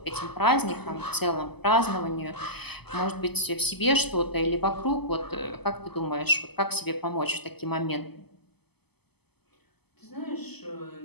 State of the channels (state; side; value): late; right; 0.97 ms